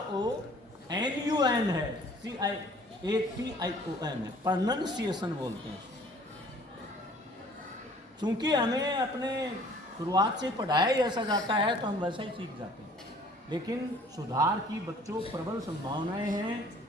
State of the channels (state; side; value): normal; both; correlation 0.54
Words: है, CIATION है, प्रोनंसिएशन बोलते हैं। चूंकि हमें अपने शुरुआत से पढ़ाया ही ऐसा जाता है, तो हम वैसा ही सीख जाते हैं। लेकिन सुधार की बच्चों प्रबल संभावनाएं हैं।